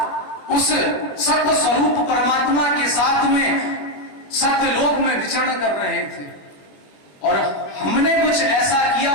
उस सत्य स्वरूप परमात्मा के साथ में सत्य लोक में विचरण कर रहे थे। और हमने कुछ ऐसा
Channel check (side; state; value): right; late; 21 ms